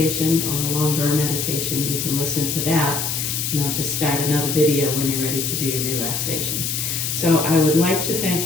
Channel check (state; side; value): noise; left; hiss, 2 dB below the sound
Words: or a longer meditation, you can listen to that, and I'll just start another video when you're ready to do your relaxation. So I would like to thank